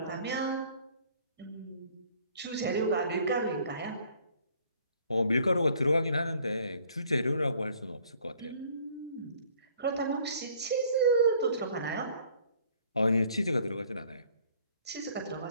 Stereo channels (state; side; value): inverted; both; correlation -0.58